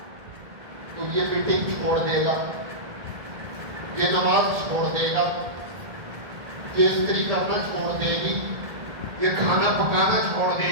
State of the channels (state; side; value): late; left; 1.7 ms